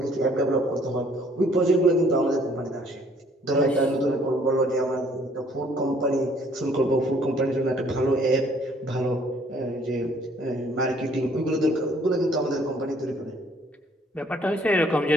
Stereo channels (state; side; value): normal; both; correlation 0.61